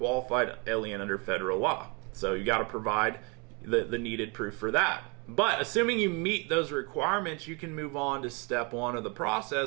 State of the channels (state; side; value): quieter; left; 31.4 dB